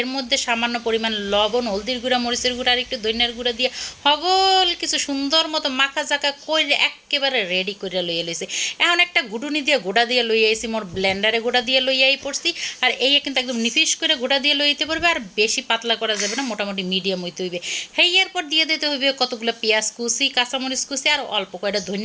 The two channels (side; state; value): both; identical; correlation 1.00